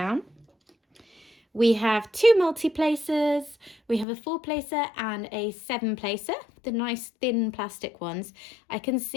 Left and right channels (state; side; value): drops out; right; at 4.0 s